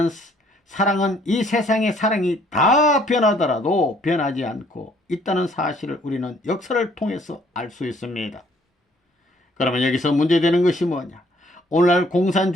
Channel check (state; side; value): normal; both; correlation 0.63